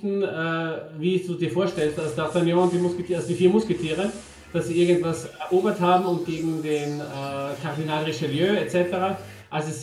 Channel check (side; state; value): both; identical; correlation 1.00